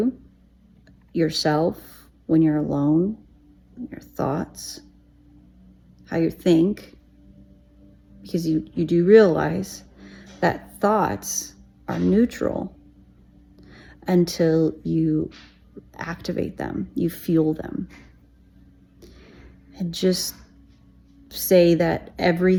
yourself, when you're alone, your thoughts, how you think, because you do realize that thoughts are neutral until you activate them, you fuel them. And just say that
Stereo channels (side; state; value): both; identical; correlation 1.00